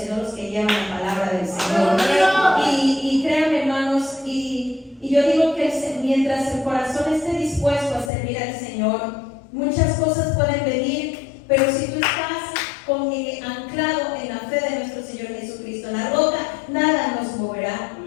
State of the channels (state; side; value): drops out; right; at 8.1 s